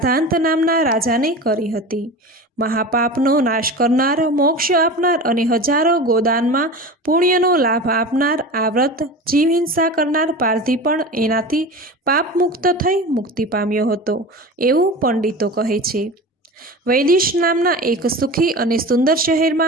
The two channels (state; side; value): normal; both; correlation 0.32